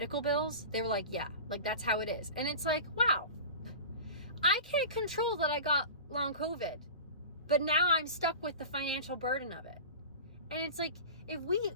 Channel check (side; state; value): both; inverted; correlation -0.34